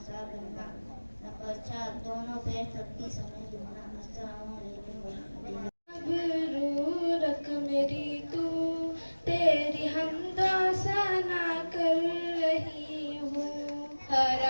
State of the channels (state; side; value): inverted; both; correlation -1.00